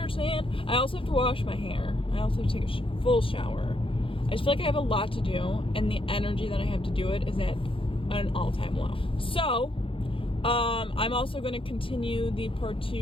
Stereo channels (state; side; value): late; right; 0.26 ms